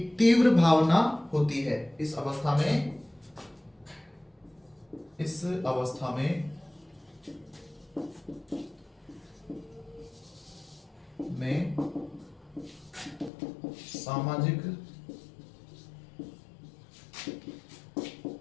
तीव्र भावना होती है। इस अवस्था में सामाजिक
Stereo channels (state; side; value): drops out; right; at 13.3 s